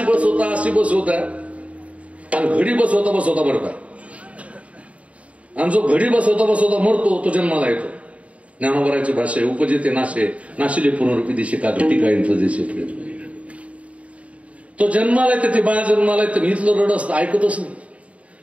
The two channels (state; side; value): late; left; 0.065 ms